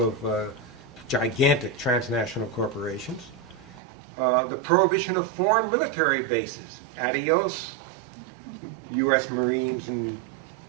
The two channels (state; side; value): drops out; left; at 3.8 s